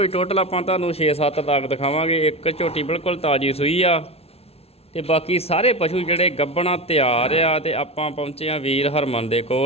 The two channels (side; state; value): right; late; 0.30 ms